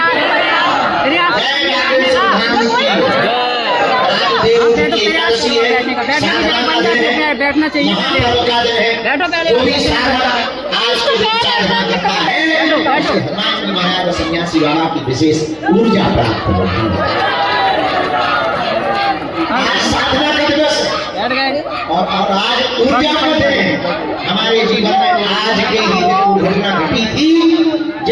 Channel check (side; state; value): both; identical; correlation 1.00